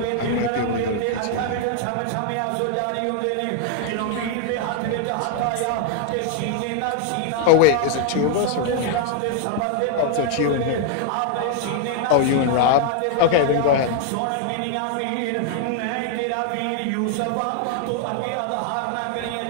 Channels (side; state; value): both; different; correlation 0.00